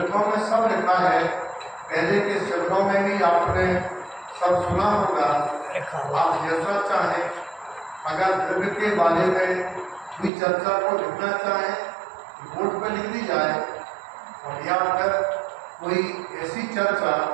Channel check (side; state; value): left; drops out; at 10.3 s